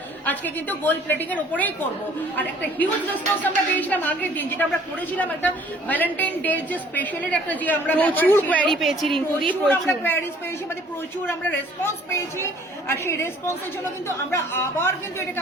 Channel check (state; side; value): normal; both; correlation 0.55